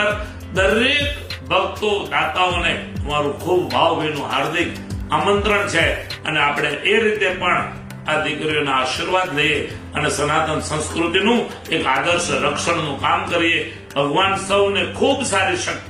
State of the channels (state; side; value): identical; both; correlation 1.00